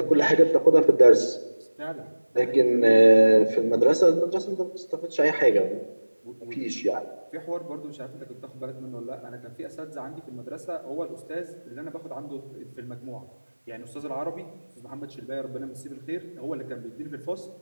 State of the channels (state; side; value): inverted; both; correlation -1.00